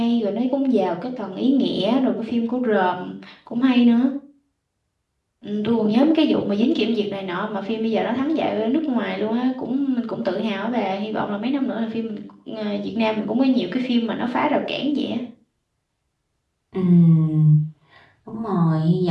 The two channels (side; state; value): both; identical; correlation 1.00